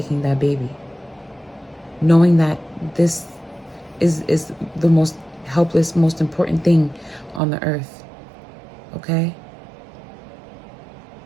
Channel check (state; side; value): drops out; left; at 7.4 s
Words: that baby, knowing that this is the most helpless, most important thing on the earth. Okay?